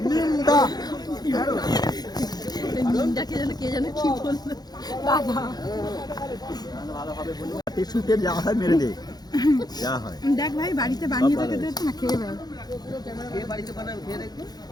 কে যেন কি বললো দাদা। টিস্যুতে যা হয় মেরে দে, যা হয় দেখ ভাই, বাড়িতে বানিয়ে রেখে দে না, খেয়ে ভাই।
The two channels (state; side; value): late; right; 0.19 ms